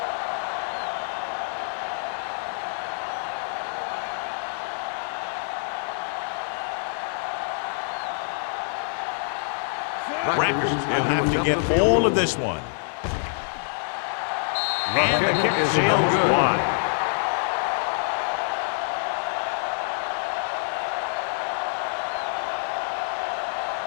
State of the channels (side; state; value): right; silent; 61 dB below the other